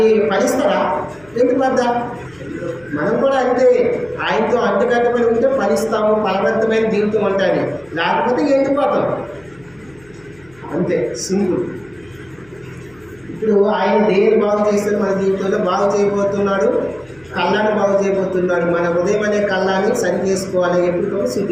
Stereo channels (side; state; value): left; noise; hum, 29 dB below the sound